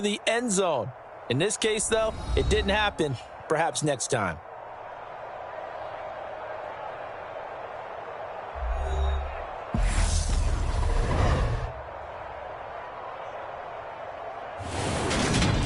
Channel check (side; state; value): both; identical; correlation 1.00